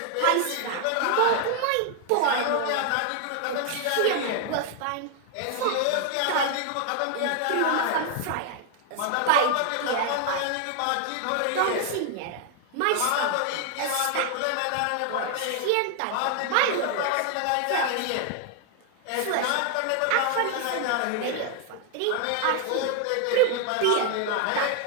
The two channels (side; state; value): both; different; correlation 0.00